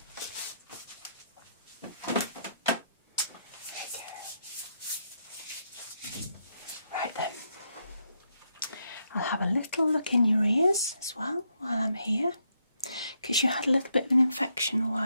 Right then. I'll have a little look in your ears as well while I'm here. Because you had a little bit of an infection a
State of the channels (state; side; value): inverted; both; correlation -0.78